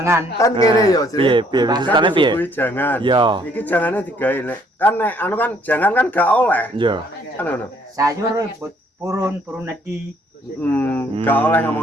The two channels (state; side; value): normal; both; correlation 0.64